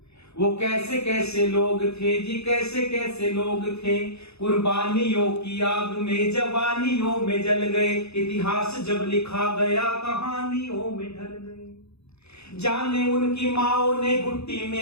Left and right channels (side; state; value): right; late; 0.79 ms